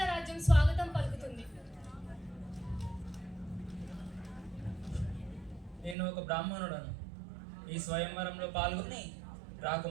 రాజ్యం స్వాగతం పలుకుతుంది. నేను ఒక బ్రాహ్మణుడను. ఈ స్వయంవరంలో పాల్గొని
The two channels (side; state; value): left; drops out; at 6.0 s